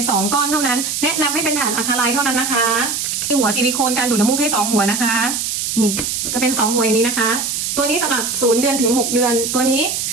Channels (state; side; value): noise; right; hiss, 2 dB below the sound